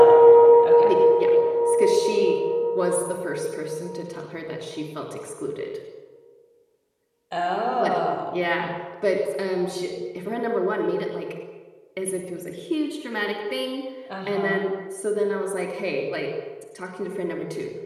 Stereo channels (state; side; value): identical; both; correlation 1.00